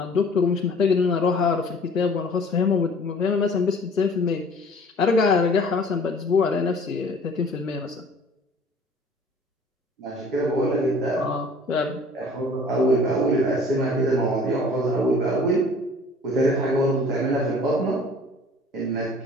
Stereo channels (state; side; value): normal; both; correlation 0.50